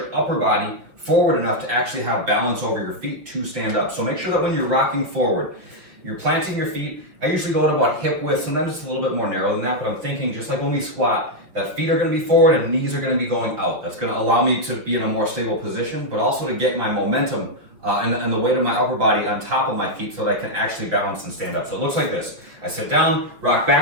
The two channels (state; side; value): late; left; 6.1 ms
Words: upper body forward enough to actually have balance over your feet to stand up. So make sure that when you're rocking forward, you're planting your feet. I usually go at about hip width, sometimes it's a little bit more narrow than that, but I'm thinking just like when we squat, that feet are gonna be forward and knees are gonna be going out. That's gonna allow me to be in a more stable position, but also to get my momentum and the weight of my upper body on top of my feet so that I can actually balance and stand up. So it looks like this. I sit down, rock